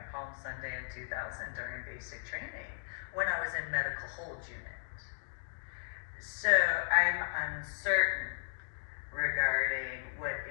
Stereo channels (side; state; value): right; silent; digital silence